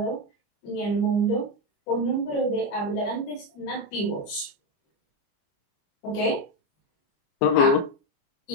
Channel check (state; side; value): late; right; 29 ms